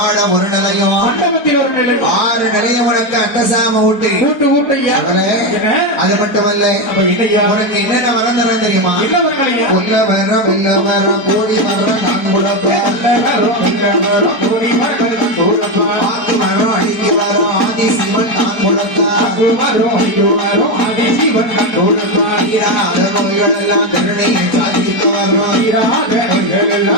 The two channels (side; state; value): right; late; 4.4 ms